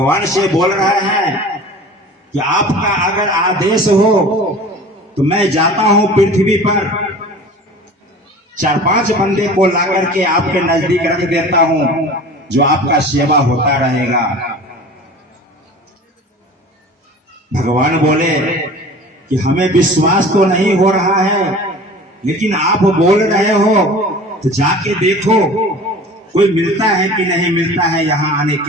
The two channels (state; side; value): normal; both; correlation 0.41